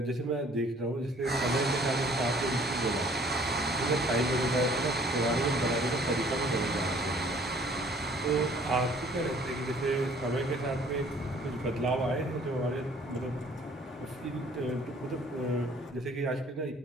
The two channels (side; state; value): both; normal; correlation 0.56